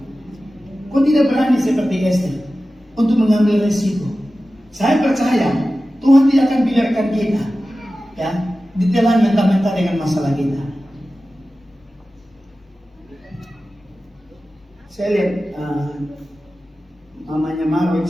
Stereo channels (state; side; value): normal; both; correlation 0.95